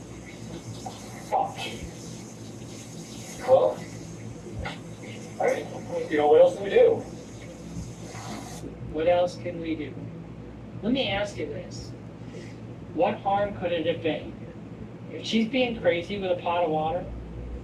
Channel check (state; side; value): identical; both; correlation 1.00